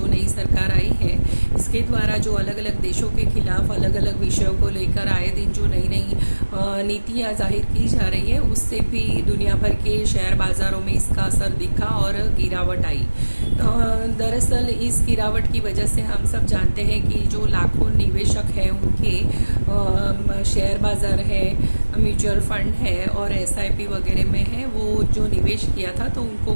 नई सरकार आई है इसके द्वारा जो अलग अलग देशों के खिलाफ अलग अलग विषयों को लेकर आए दिन जो नई नई नीतियां जाहिर की जा रही है, उससे भी दुनिया भर के शेयर बाजारों में इसका असर दिखा और गिरावट आई। दरअसल इस गिरावट की वजह से हम सब जानते हैं कि जो लाखों निवेशक हैं उनके शेयर बाजार है, म्यूचुअल फंड है और एसआईपी वगैरह में है, वो जो निवेश किया था तो उनको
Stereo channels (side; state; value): both; inverted; correlation -1.00